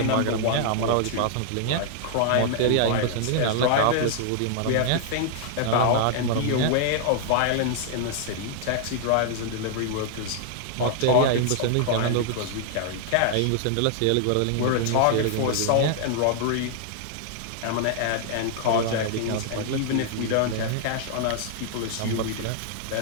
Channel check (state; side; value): different; both; correlation -0.01